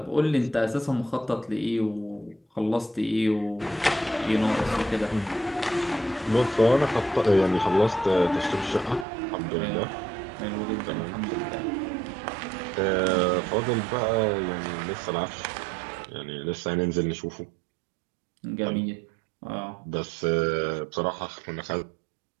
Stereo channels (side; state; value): left; drops out; at 9.1 s